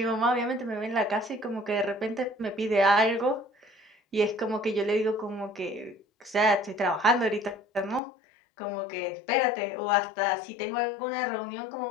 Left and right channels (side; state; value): right; drops out; at 8.0 s